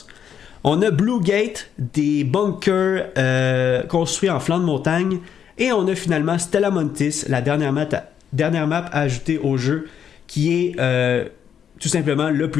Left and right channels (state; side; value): quieter; right; 8.4 dB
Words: On a Blue Gate, des bunkers construits en flanc de montagne. Et on a finalement Stella Montis, la dernière map ajoutée au jeu, qui est tout simplement le